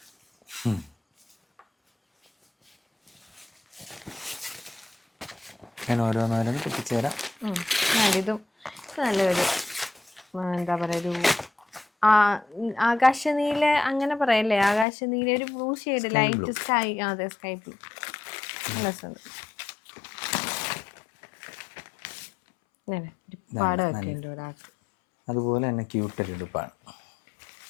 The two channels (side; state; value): right; drops out; at 14.9 s